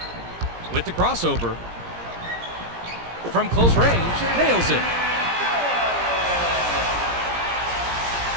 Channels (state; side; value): late; left; 17 ms